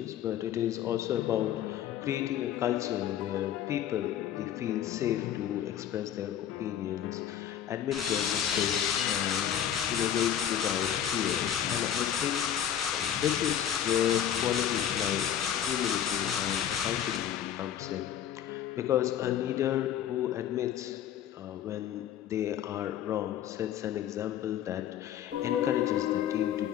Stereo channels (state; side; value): quieter; right; 10.2 dB